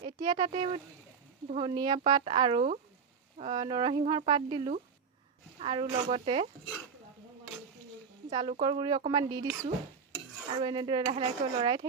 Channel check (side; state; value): left; quieter; 6.0 dB